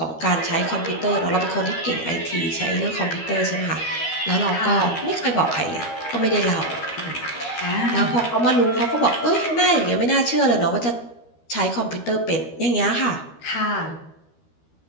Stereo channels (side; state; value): right; late; 13 ms